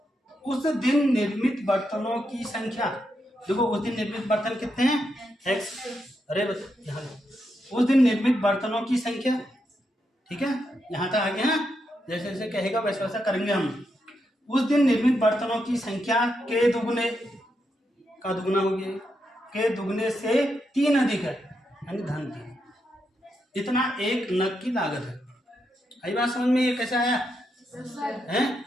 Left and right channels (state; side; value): normal; both; correlation 0.83